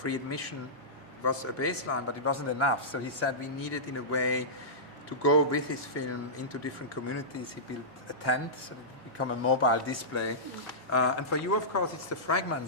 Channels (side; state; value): both; normal; correlation -0.16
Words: admission was a baseline, but it wasn't enough. So he said we needed, in a way, to go with his film into different communities. He built a tent, so that it became a mobile display. And for you, of course, it's the